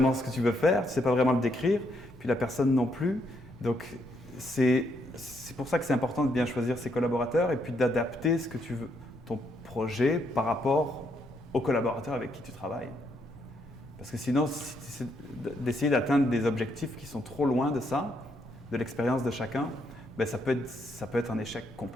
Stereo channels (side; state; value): both; normal; correlation 0.75